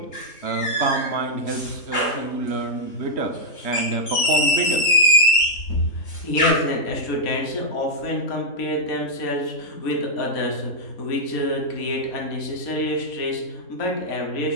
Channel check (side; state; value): right; late; 3.7 ms